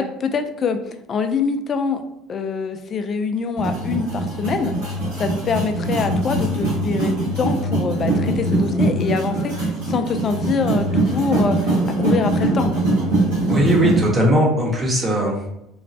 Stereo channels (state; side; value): normal; both; correlation 0.54